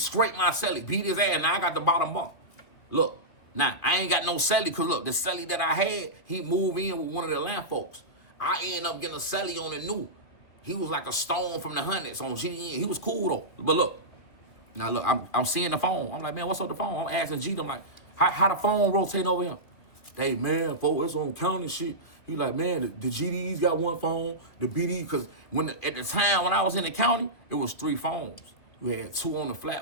my celly, beat his ass, now I got the bottom bump. Look, now, I ain't got no celly, because look, the celly that I had, he moved in with one of the land folks. I ended up getting a celly on the new. He was like a stone from the hundreds on GDN. He was cool, though. But look, now look, I'm seeing the phone. I'm like, man, what's up the phone? I'm asking G, I'm like, how the phone rotate over here? Hey, man, folks, it's on county shit. He like, man, the GDs got one phone, the BD, because at the time when I was in the county, it was 3 phones. You had 2 on the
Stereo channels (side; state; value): right; late; 2.7 ms